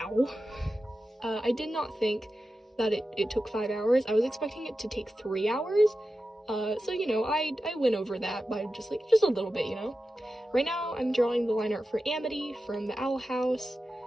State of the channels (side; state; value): both; normal; correlation 0.92